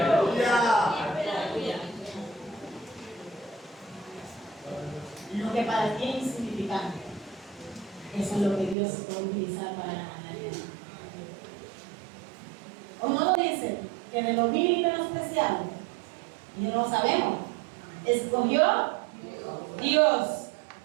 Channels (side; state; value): left; drops out; at 8.8 s